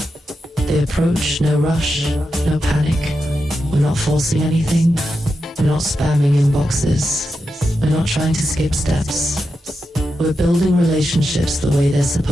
The approach, no rush, no panic. We're not forcing anything. We're not spamming inboxes. We're not trying to skip steps. We're building relationships the way they're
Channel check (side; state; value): both; normal; correlation 0.88